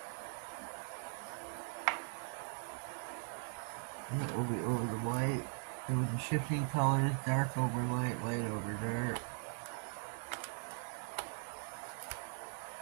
And it will be over the white. It will be shifting colors, dark over light, light over dark.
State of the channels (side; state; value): left; silent; 51 dB below the other